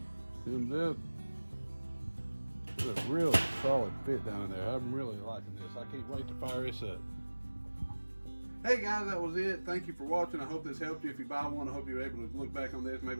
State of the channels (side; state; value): both; inverted; correlation -1.00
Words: Zoomed up. There's a real solid fit down in there. I'm really liking this. I can't wait to fire this up. Hey guys, that was it. Thank you for watching. I hope this helped you. If you buy one, I hope you're able to look back on this. Maybe